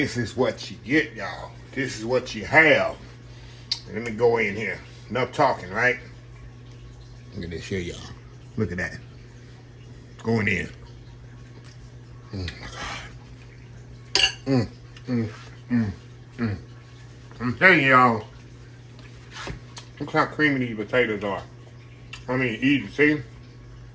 is what you get, y'all. This is what you have. Let me go in here. Enough talking, right? Look at this here, y'all. Look at that. Going in. Oh my God. I'm telling y'all, look how creamy these potatoes are. I mean, easy, see?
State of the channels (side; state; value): both; identical; correlation 1.00